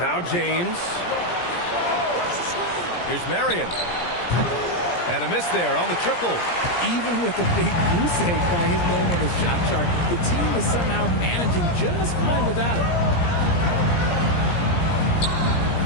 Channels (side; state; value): right; late; 17 ms